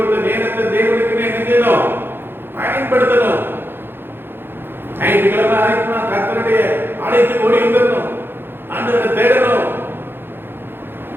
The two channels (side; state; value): left; late; 0.10 ms